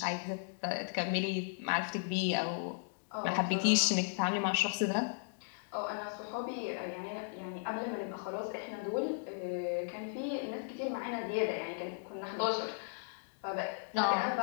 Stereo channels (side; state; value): right; silent; digital silence